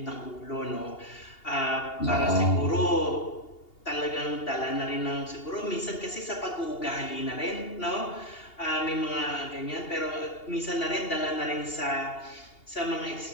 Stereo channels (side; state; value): right; late; 2.8 ms